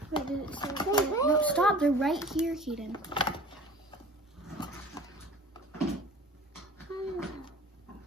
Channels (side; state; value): both; normal; correlation 0.44